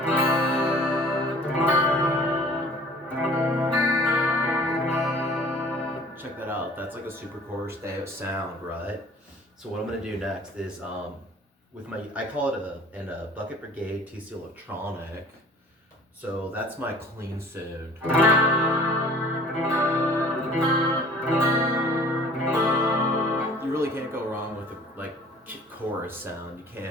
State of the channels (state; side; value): normal; both; correlation 0.49